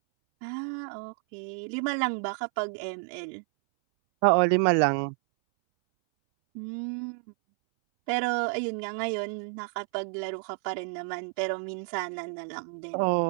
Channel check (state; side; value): silent; left; 58 dB below the other